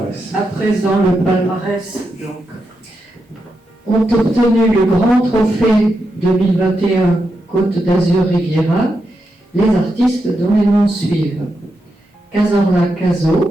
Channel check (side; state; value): both; normal; correlation 0.86